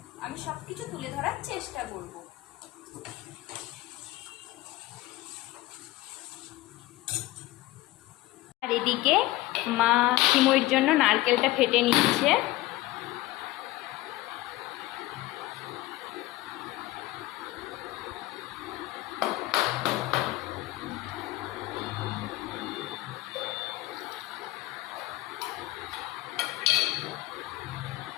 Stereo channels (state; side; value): quieter; right; 18.0 dB